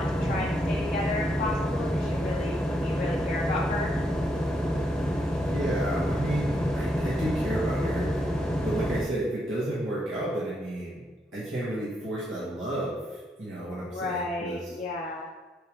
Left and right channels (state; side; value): normal; both; correlation 0.78